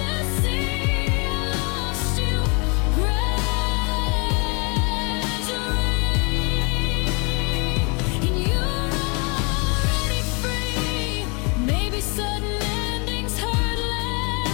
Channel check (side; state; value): right; quieter; 32.6 dB